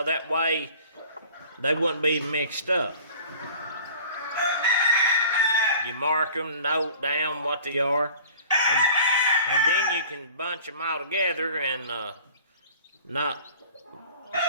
that way they wouldn't be mixed up. You mark them, note down what they are, and then you can bunch them all together and not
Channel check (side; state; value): both; inverted; correlation -0.45